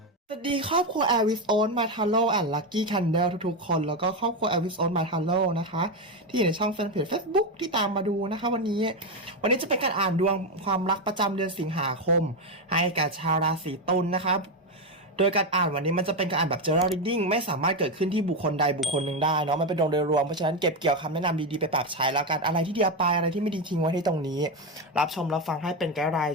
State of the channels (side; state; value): both; normal; correlation 0.10